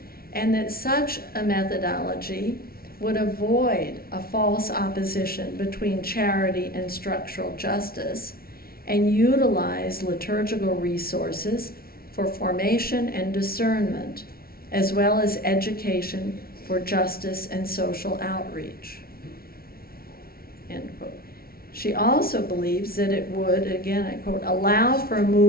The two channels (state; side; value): late; right; 0.44 ms